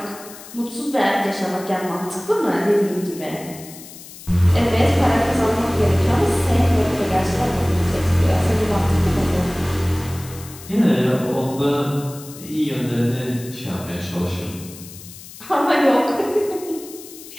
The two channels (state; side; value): noise; left; hiss, 17 dB below the sound